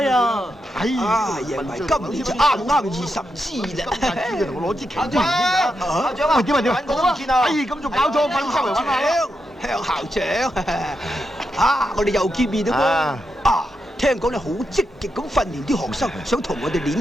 啊！哎呀，贏埋今年就啱20支啦！同我攞支旗出嚟先啊！校長啊，點啊？揾我都唔見啊！哎，咁仲搞錯，揾周圍揾下。向校長啊！我哋又見面啦喎！啊，聽講你好積極咁訓練啲學生，想同我哋練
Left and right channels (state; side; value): normal; both; correlation 0.85